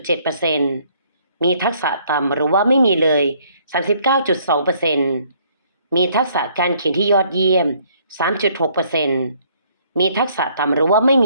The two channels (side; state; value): both; inverted; correlation -0.64